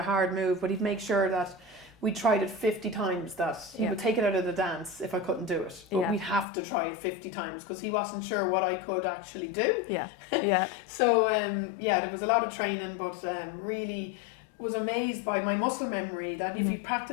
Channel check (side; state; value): right; drops out; at 6.5 s